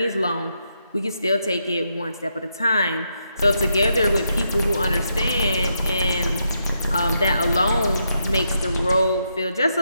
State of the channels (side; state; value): both; inverted; correlation -0.81